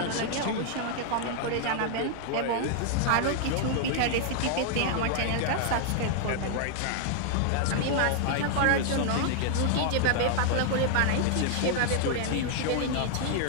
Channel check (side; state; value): both; different; correlation 0.00